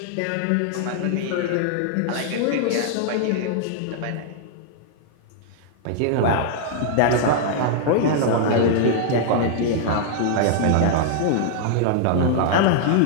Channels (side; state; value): both; different; correlation 0.00